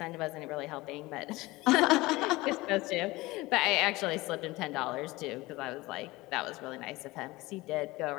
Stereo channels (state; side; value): quieter; right; 20.6 dB